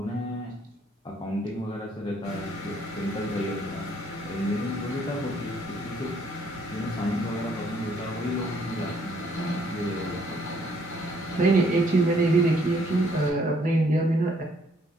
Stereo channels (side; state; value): both; normal; correlation 0.66